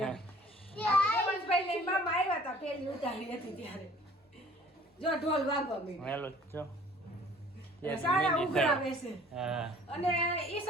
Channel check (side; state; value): both; normal; correlation 0.52